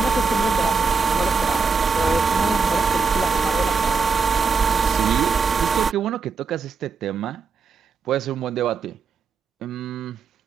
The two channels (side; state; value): left; quieter; 5.0 dB